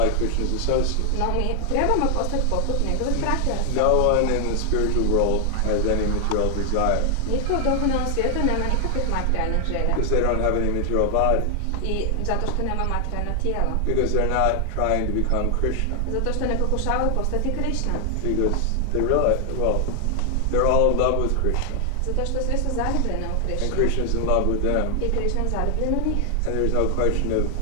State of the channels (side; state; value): both; different; correlation 0.00